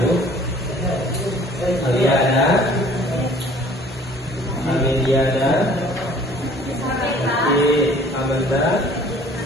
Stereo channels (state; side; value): normal; both; correlation 0.52